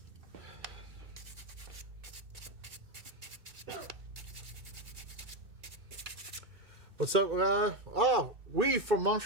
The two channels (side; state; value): left; late; 2.6 ms